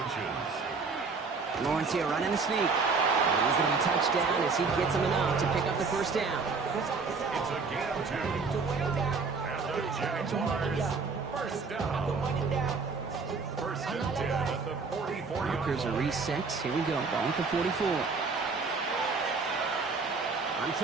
Lawrence here running the sneak. And he's going to be touched down as he gets him enough to pick up the first down. It's a gain of 2. And the Jaguars first down. First and 10 at the 44. Markers are reset. Here we go. Ball at the 44. On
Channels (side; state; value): left; quieter; 4.6 dB